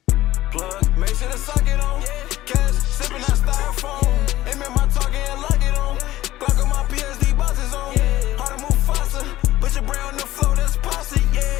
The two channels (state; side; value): quieter; right; 15.4 dB